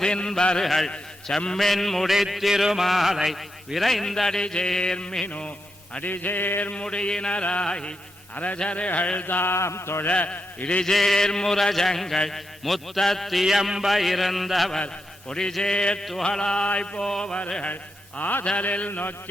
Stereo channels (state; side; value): normal; both; correlation 0.85